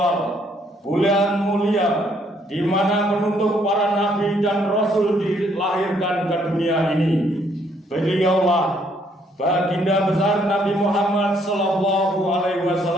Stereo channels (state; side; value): normal; both; correlation 0.68